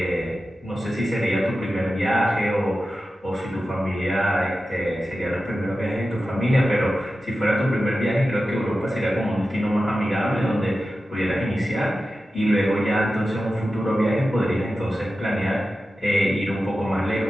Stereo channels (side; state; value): both; normal; correlation 0.93